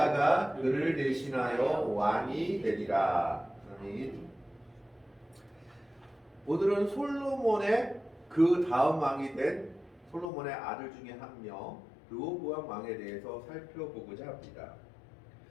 그를 대신하여 왕이 되리라. 아멘. 오늘은 솔로몬의 그 다음 왕이 된 솔로몬의 아들 중에 한 명 르호보암 왕에 대해서 살펴보고자 합니다.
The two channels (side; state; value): right; drops out; at 10.2 s